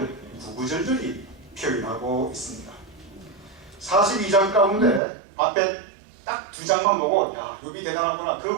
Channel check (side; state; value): left; drops out; at 5.0 s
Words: 구구절절히 표현하고 있습니다. 42장 가운데 앞에 딱 2장만 보고 야 욥이 대단하구나, 그